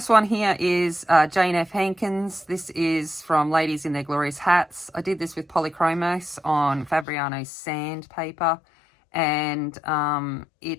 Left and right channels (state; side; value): drops out; right; at 7.1 s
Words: one here is Jane F. Hankins. This is from Ladies in Their Glorious Hats. I did this with Polychromos on Fabriano's sandpaper, and